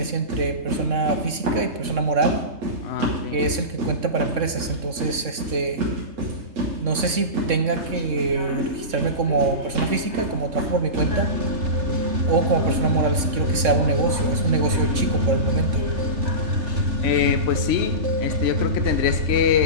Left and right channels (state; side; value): late; left; 3.6 ms